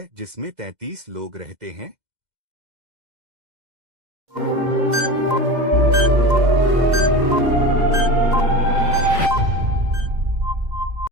जिसमें 33 लोग रहते हैं?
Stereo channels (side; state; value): left; late; 2.0 ms